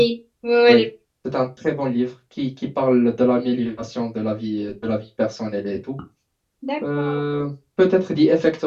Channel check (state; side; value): identical; both; correlation 1.00